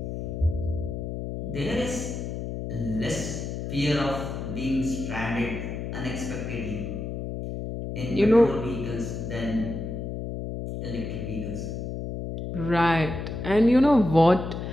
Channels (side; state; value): left; noise; hum, 5 dB below the sound